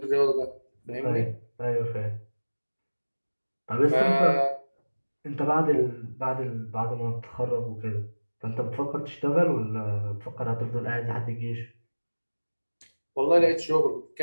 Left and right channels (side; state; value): both; inverted; correlation -1.00